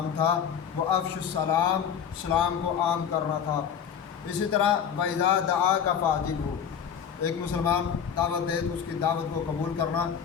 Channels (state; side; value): quieter; right; 7.9 dB